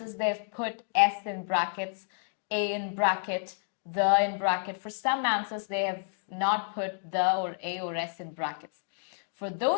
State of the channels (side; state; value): right; silent; digital silence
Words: they've put S in brackets, A in bracket, the in bracket. For some answers they have not put the or A or S in brackets. For